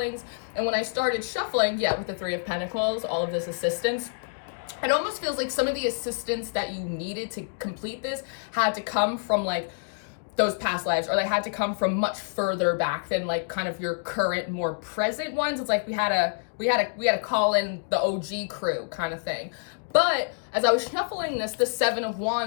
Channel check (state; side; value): silent; right; digital silence